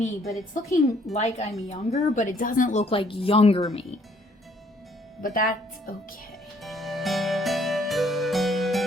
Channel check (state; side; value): normal; both; correlation 0.64